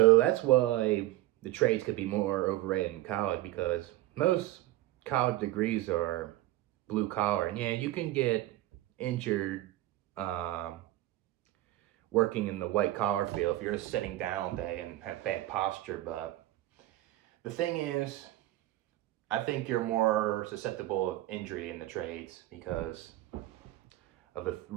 that's why the trades could be more overrated in college, because most college degrees are blue collar, and yeah, you can get injured working in the white collar field if you're just sitting down all day and have bad posture. But the thing is, I think you're more susceptible of injury in the trades because of the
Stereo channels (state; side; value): quieter; left; 15.9 dB